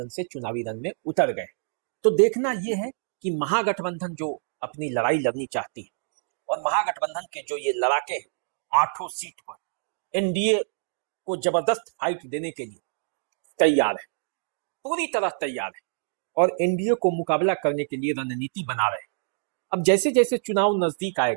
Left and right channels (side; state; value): left; silent; digital silence